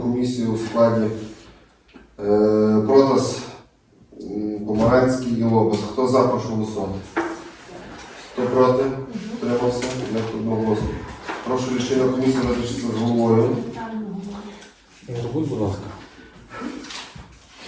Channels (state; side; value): identical; both; correlation 1.00